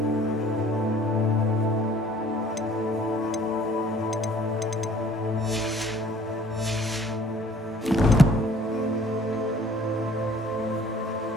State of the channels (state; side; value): normal; both; correlation 0.56